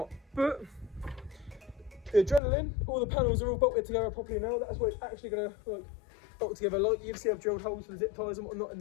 But, the adrenaline, all the panels are all bolted together properly now. That's what it's actually gonna like bolt together. Like you can see I've drilled holes for the zip ties and whatnot in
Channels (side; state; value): right; drops out; at 2.4 s